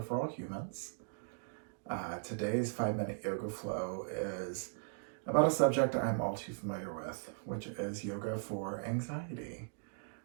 for All Humans. Today's 5-minute yoga flow is about a subject I'm all too familiar with, which is yoga for anxiety.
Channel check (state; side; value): silent; left; digital silence